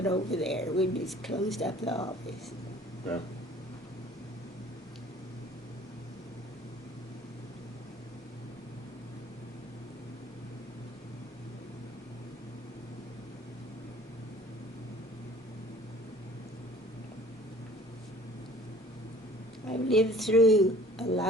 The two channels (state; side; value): normal; both; correlation 0.50